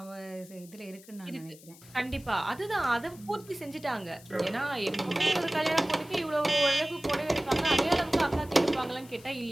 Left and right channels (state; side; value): noise; left; hiss, 22 dB below the sound